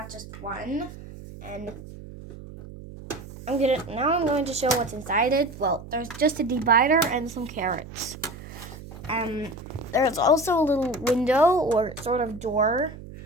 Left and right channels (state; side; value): noise; right; hum, 14 dB below the sound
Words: just one, and I'm going to show what's inside it. Well, there's just a divider and some carrots. There's also a little window or sort of door